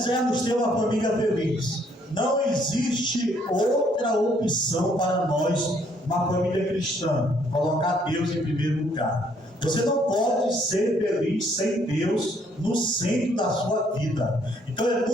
ter uma família feliz, não existe outra opção para nós, uma família cristã, colocar Deus em primeiro lugar. Você não pode ser feliz sem Deus no centro da sua vida. Então é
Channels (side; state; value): both; normal; correlation 0.66